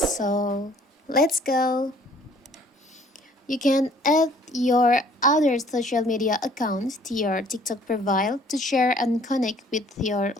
let's go. You can add your other social media accounts to your TikTok profile to share and connect with your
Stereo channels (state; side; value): normal; both; correlation 0.57